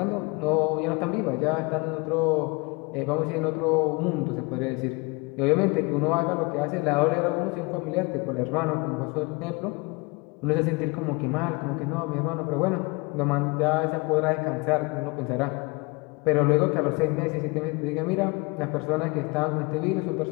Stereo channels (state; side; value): quieter; right; 27.1 dB